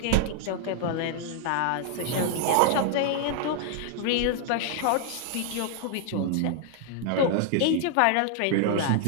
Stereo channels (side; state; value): both; different; correlation 0.00